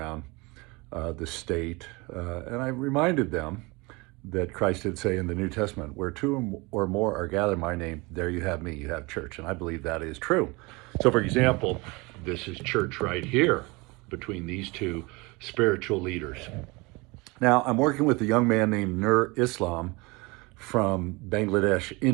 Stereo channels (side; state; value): left; quieter; 25.6 dB